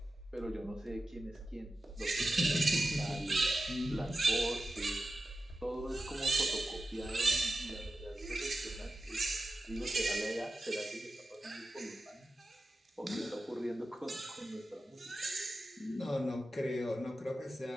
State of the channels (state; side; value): normal; both; correlation 0.93